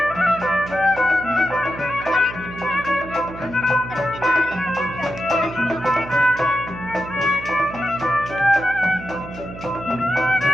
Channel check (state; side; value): noise; right; hum, 13 dB below the sound